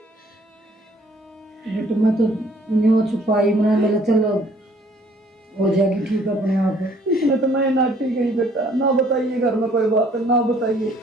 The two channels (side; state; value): both; normal; correlation 0.60